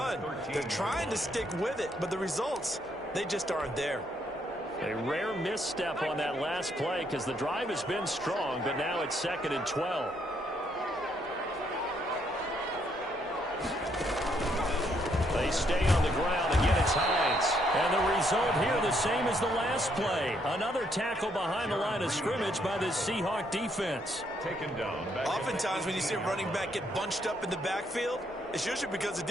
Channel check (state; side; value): normal; both; correlation 0.72